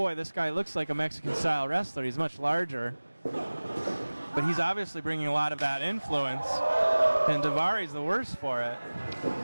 this guy looks like a Mexican-style wrestler. He's much larger. But he's obviously bringing a lot of that influence. And Daivari's the worst for it.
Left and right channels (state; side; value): inverted; both; correlation -1.00